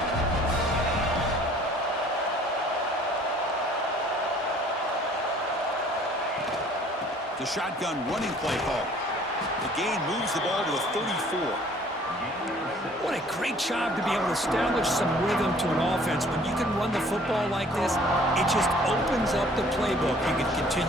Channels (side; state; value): both; normal; correlation 0.55